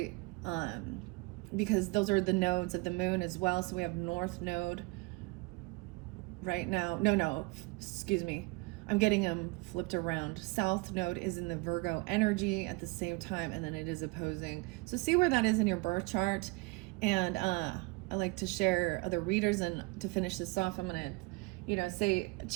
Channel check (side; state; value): left; quieter; 24.8 dB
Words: because those are the nodes of the moon as well. So we have north node right now. No, excuse me. I'm getting them flipped around. South node is in the Virgo energy at the same time, and then it is opposing. So see where that is in your birth chart. And I like to share other readers. And to finish this off, I'm going to, say,